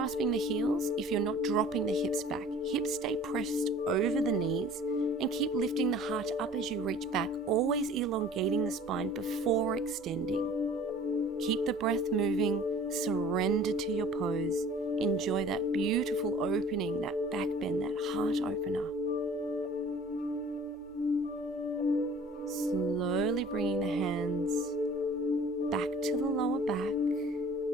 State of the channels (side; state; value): both; normal; correlation 0.48